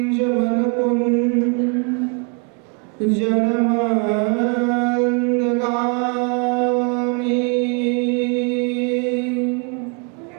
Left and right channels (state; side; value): quieter; left; 35.9 dB